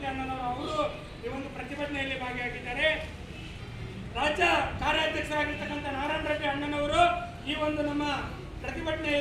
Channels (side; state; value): both; identical; correlation 1.00